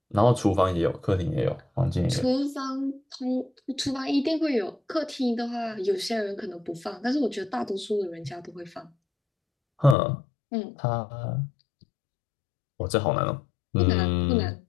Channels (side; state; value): right; drops out; at 10.0 s